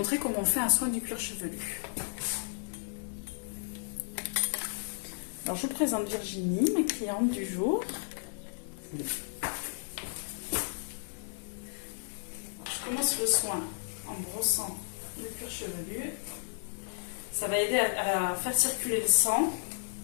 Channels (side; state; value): right; silent; digital silence